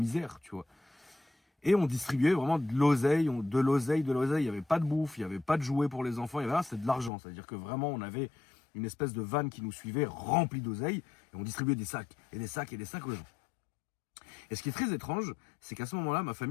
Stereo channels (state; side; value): drops out; right; at 7.1 s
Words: tu vois. Et on distribuait vraiment de l'oseille, il n'y avait pas de bouffe, il n'y avait pas de jouets pour les enfants, il y avait là, c'était de l'argent, c'est-à-dire que vraiment on avait une espèce de vanne qui nous suivait remplie d'oseille, et on distribuait des sacs, et des sacs, et des sacs aux gens. Et ce qui est très étrange, c'est qu'à ce moment-là, ma